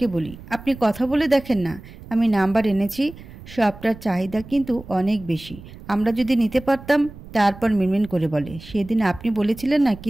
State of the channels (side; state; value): right; noise; rumble, 17 dB below the sound